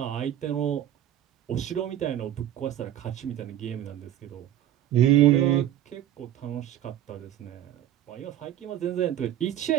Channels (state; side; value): quieter; left; 11.7 dB